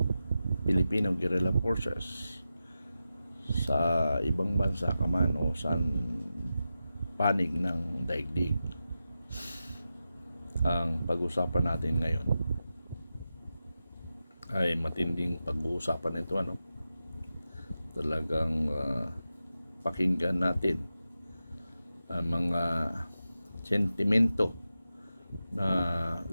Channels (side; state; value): both; inverted; correlation -0.91